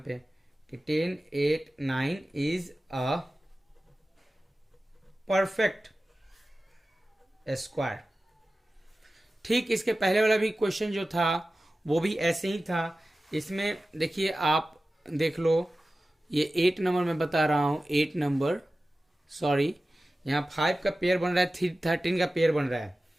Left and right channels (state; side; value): normal; both; correlation 0.95